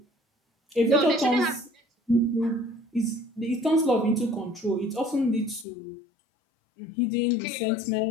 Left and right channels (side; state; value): right; drops out; at 5.7 s